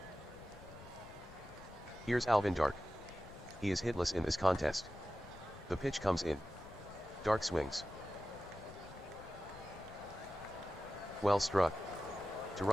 Here's Alvin Dark. He is hitless in this contest. The pitch comes in. Dark swings. Well struck. To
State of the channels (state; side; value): noise; left; rumble, 18 dB below the sound